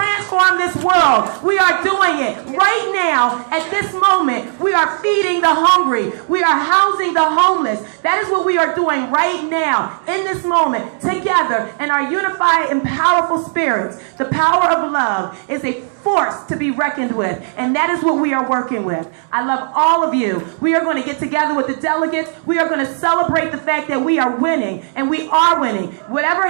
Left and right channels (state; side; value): silent; left; digital silence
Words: this world. We are doing it right now. At this moment, we are feeding the hungry. We are housing the homeless. That is what we are doing right now, in this moment, together in our unified and powerful spirits. The power of love is a force to be reckoned with, and that is what we are working with. I love all of you. We are going to get together with the delegates. We are going to celebrate the fact that we are winning, and we are winning. Whatever